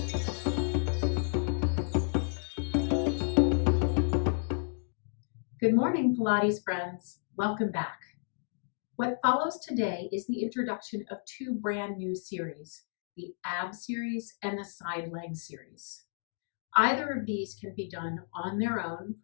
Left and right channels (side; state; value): right; silent; digital silence